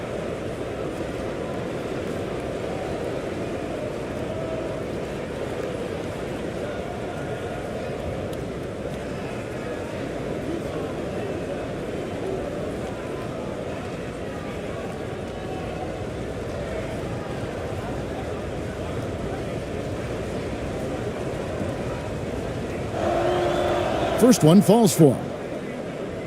First one falls for him.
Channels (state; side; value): identical; both; correlation 1.00